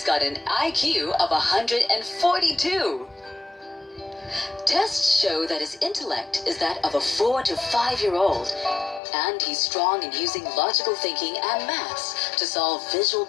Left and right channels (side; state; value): right; drops out; at 9.0 s